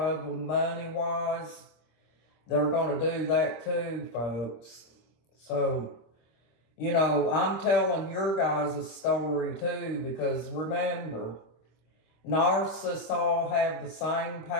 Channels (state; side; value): late; right; 26 ms